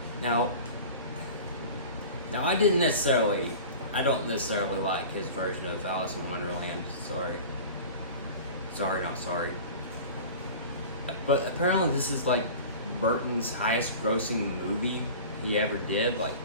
Now I don't necessarily like his version of Alice in Wonderland. Sorry, not sorry. But apparently this is like Burton's highest grossing movie he ever did. Like,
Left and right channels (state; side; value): inverted; both; correlation -0.37